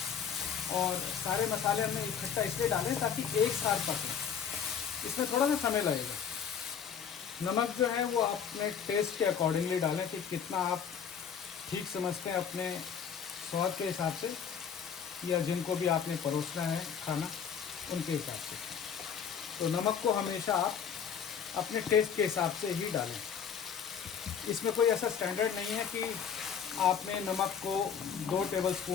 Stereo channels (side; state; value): right; quieter; 7.5 dB